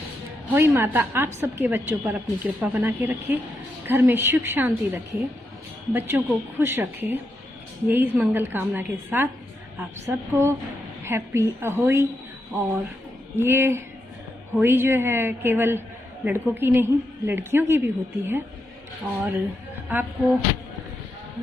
होली माता आप सबके बच्चों पर अपनी कृपा बना के रखे, घर में सुख शांति रखे, बच्चों को खुश रखे। यही मंगल कामना के साथ आप सबको हैप्पी होली। और ये होली जो है केवल लड़कों की नहीं, लड़कियों की भी होती है। और आपको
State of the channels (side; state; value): both; normal; correlation 0.83